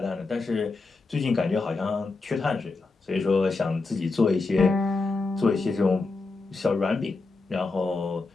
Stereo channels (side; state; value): right; quieter; 3.8 dB